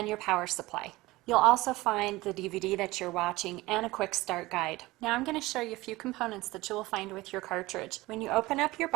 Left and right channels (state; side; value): quieter; left; 19.7 dB